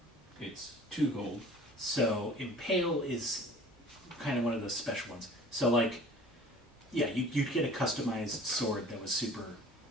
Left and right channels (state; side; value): normal; both; correlation 0.46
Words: it's 2 gold. So impale is kind of one of those special ones. So like, yeah, you'd get a customized sword that was super